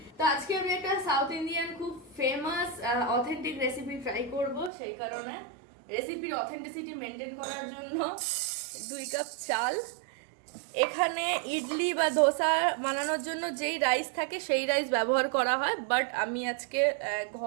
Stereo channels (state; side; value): drops out; left; at 4.7 s